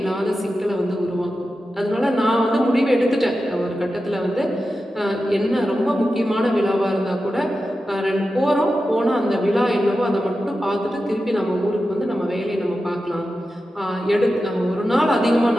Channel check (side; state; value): both; normal; correlation 0.92